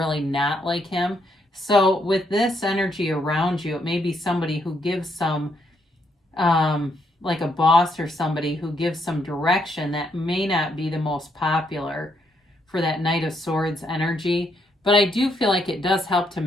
not like him. So with this energy around you, it may be somebody who gives some, like a boss or somebody who gives some direction that may not be the most popular for that Knight of Swords energy. But I do feel like it does help to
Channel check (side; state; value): both; normal; correlation 0.75